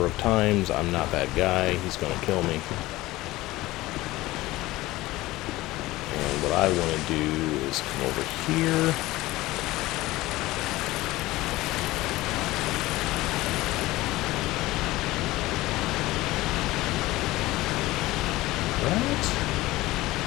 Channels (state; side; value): quieter; right; 18.3 dB